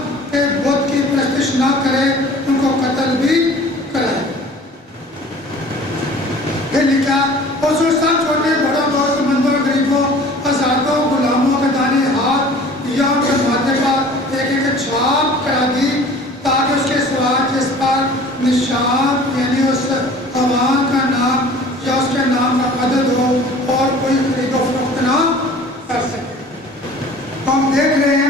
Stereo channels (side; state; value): both; normal; correlation 0.47